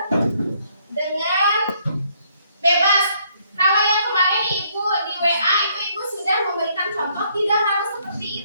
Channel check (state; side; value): inverted; both; correlation -0.68